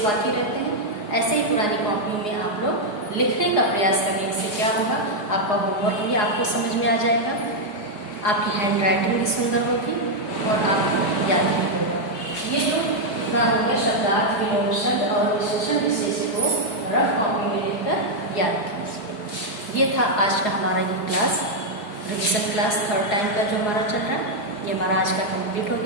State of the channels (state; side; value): late; right; 4.8 ms